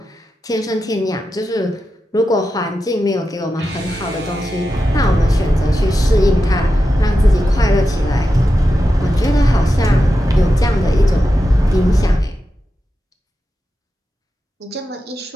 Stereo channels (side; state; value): both; normal; correlation 0.90